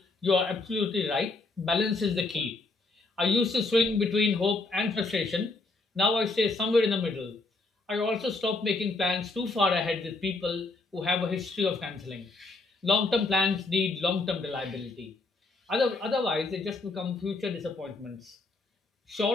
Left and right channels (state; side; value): quieter; right; 3.4 dB